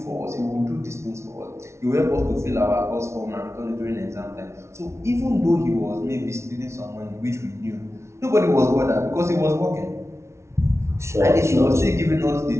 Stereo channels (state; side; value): late; left; 0.13 ms